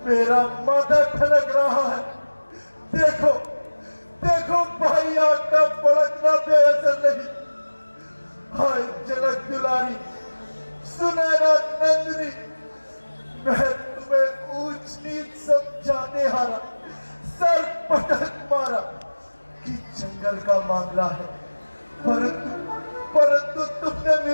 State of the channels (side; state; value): both; inverted; correlation -1.00